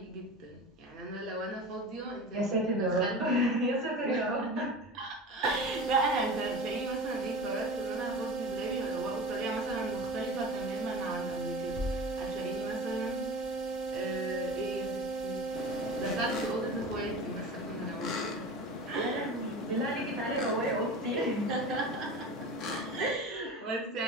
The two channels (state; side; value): normal; both; correlation 0.33